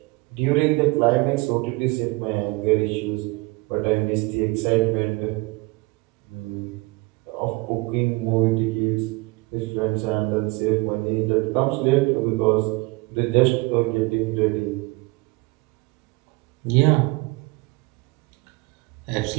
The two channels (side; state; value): left; quieter; 24.8 dB